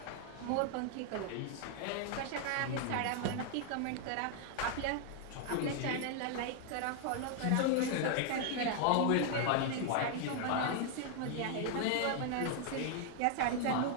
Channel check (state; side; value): different; both; correlation 0.00